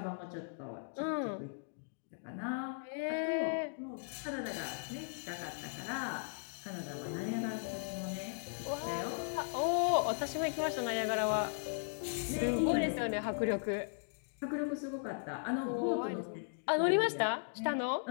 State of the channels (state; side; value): silent; right; digital silence